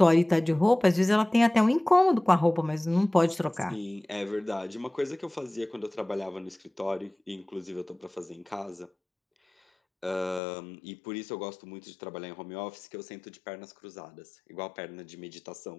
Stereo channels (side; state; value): right; drops out; at 10.4 s